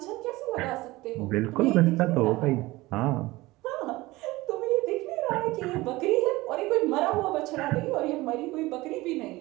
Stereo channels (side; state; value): left; quieter; 19.9 dB